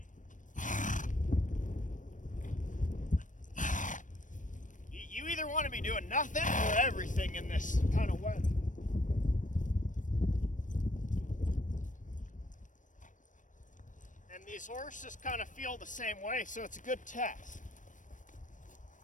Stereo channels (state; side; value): late; right; 0.37 ms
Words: either want to be doing nothing or everything in this kind of weather. And these horses kind of feel the same way, so it's a good test.